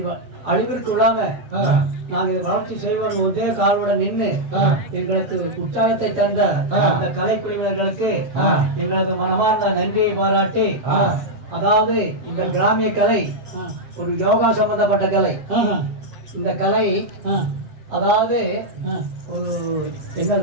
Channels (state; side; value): late; left; 7.4 ms